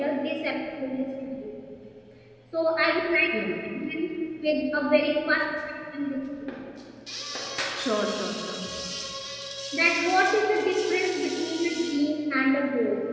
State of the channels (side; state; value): both; identical; correlation 1.00